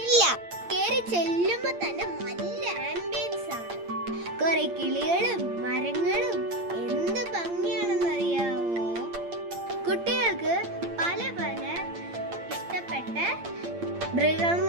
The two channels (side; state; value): left; late; 8.7 ms